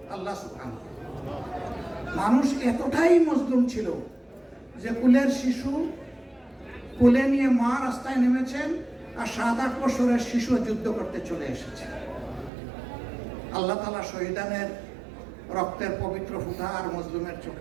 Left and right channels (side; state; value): left; drops out; at 12.5 s